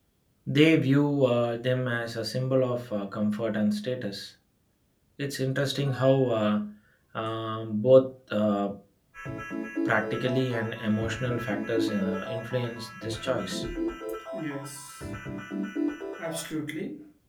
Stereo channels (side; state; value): both; identical; correlation 1.00